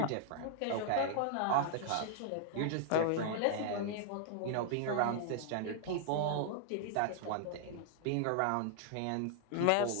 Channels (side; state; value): both; different; correlation 0.00